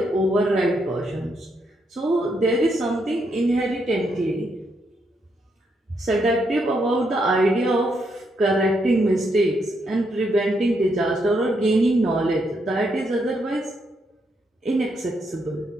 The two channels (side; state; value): both; normal; correlation 0.78